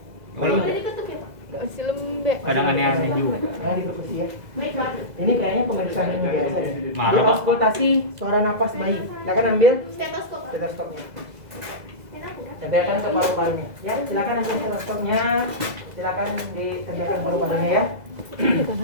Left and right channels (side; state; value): left; late; 2.0 ms